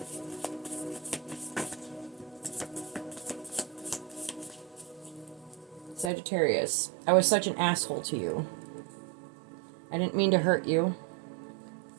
Sagittarius. I was such an asshole to you. I didn't mean to hurt you.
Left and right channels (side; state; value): left; drops out; at 6.1 s